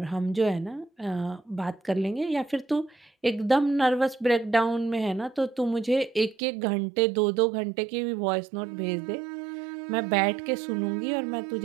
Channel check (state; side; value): drops out; left; at 6.4 s